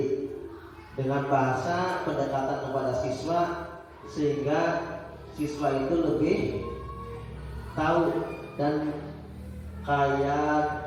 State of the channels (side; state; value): both; identical; correlation 1.00